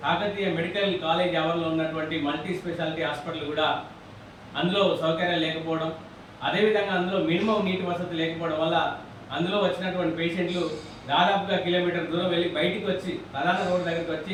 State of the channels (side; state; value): both; identical; correlation 1.00